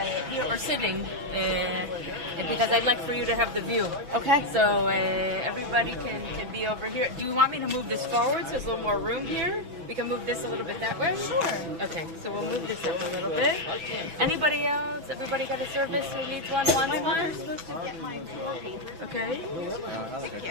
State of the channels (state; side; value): late; left; 6.1 ms